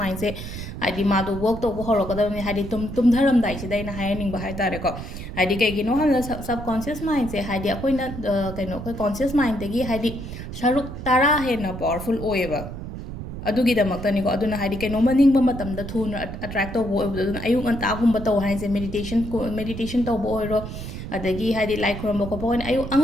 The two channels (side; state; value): right; noise; rumble, 9 dB below the sound